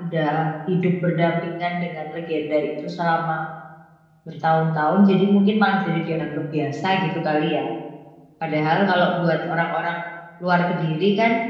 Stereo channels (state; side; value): identical; both; correlation 1.00